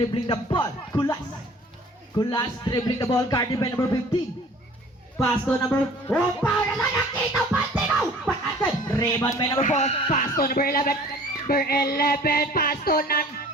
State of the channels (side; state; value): both; normal; correlation 0.49